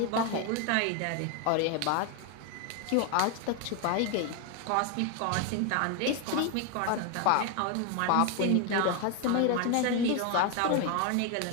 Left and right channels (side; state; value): both; different; correlation 0.01